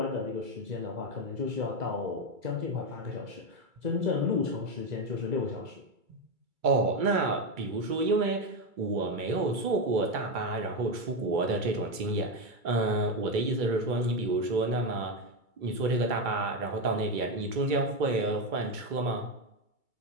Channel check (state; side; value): late; left; 2.3 ms